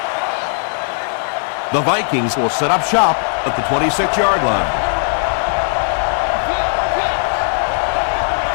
The Vikings will set up shop at the 26-yard line.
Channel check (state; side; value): silent; right; 58 dB below the other